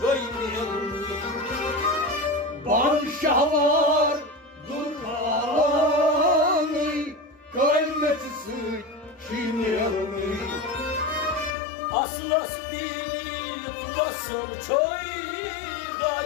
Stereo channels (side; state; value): right; drops out; at 11.6 s